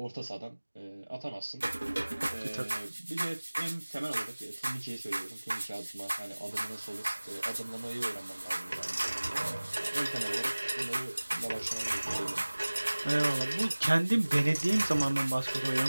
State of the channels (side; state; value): both; inverted; correlation -1.00